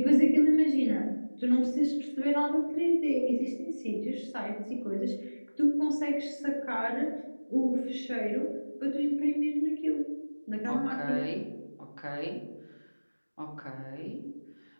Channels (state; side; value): inverted; both; correlation -1.00